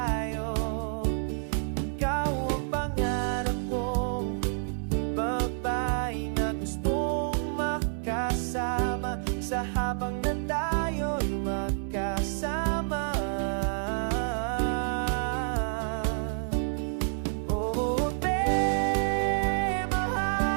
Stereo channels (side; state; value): left; silent; digital silence